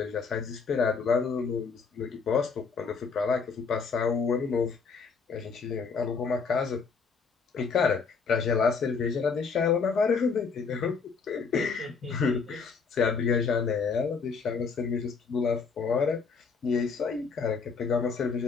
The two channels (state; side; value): quieter; right; 5.2 dB